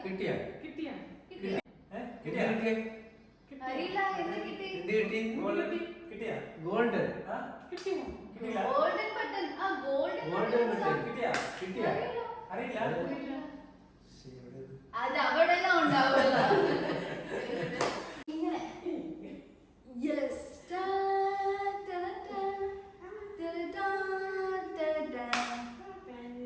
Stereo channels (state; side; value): identical; both; correlation 1.00